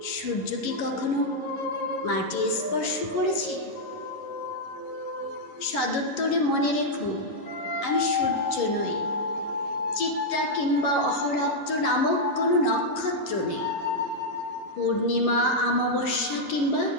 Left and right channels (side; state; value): right; late; 11 ms